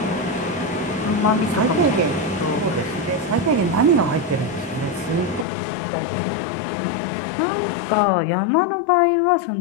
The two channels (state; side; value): drops out; right; at 5.5 s